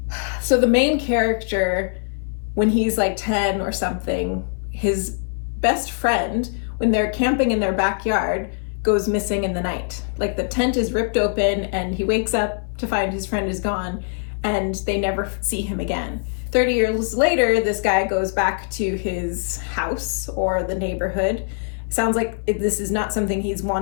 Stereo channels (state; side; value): silent; right; 60 dB below the other